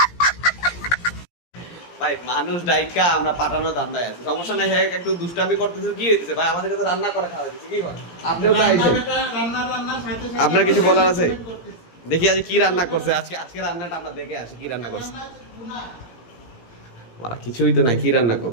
ভাই মানুষ ডাইকা আমরা পাঠানো ধান্দায় আছে, সমস্যা নাই। হ্যাঁ একটু দুষ্টামি করতেছে, কি হইতেছে ভাই? আমাদেরকে তো রান্না করে খাওয়া দিচ্ছে, কি বল? আপনিও তো আইছেন, আপনার কিছু বলার আছে? দেখি আজ কি রান্না করছে আজকে, আজকে রান্নাটা আমরা দেখে আসি কি রান্না করছে। মারা কিছুই তো নাই, কি রান্না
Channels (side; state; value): right; late; 17 ms